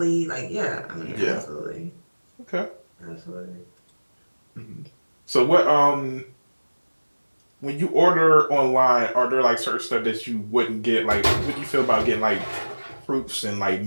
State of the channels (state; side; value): inverted; both; correlation -1.00